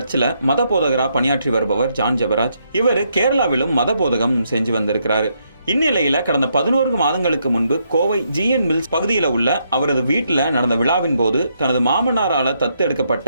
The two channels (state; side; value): inverted; both; correlation -0.76